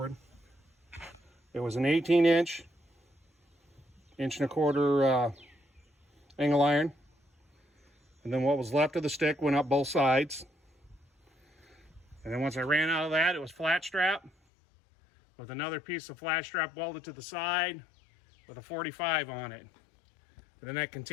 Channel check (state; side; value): drops out; right; at 14.3 s